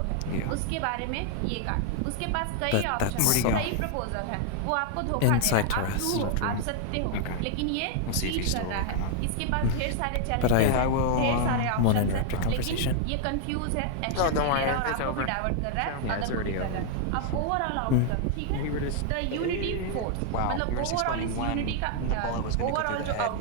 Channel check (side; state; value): both; different; correlation 0.00